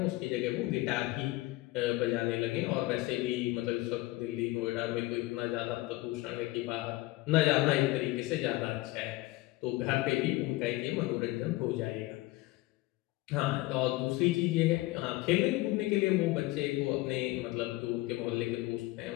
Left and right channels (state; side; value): quieter; right; 19.5 dB